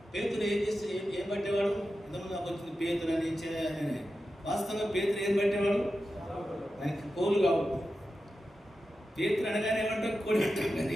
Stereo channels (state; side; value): normal; both; correlation 0.91